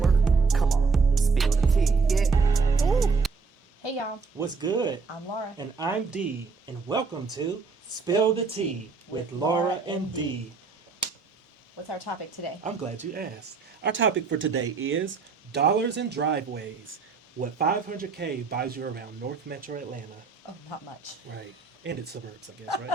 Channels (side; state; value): left; quieter; 4.7 dB